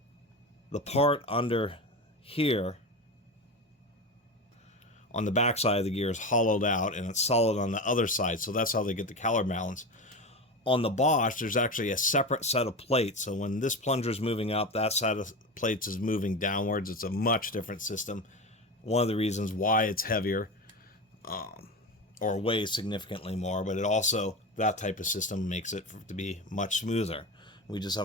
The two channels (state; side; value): normal; both; correlation 0.24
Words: The part under here on the back side of the gear is hollowed out, and it's solid on the other side, so that's how they get the counterbalance. On the Bosch, there's actually a separate set of plates, so when this plunger is moving up, that side of plates is moving downwards. It's a much different system. One of the reasons why it's heavier, or weighs significantly more, but it also, that type of system makes it to be much smoother. We just